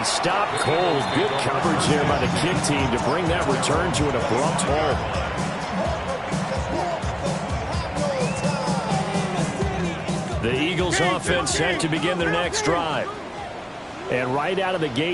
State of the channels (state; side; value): identical; both; correlation 1.00